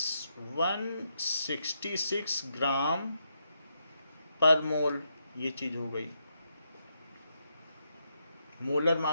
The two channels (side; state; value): both; inverted; correlation -0.81